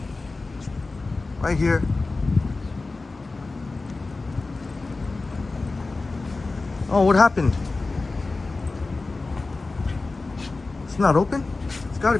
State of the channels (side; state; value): right; quieter; 3.6 dB